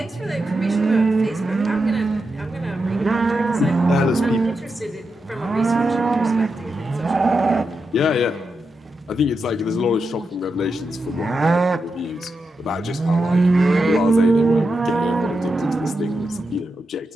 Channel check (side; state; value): both; normal; correlation 0.87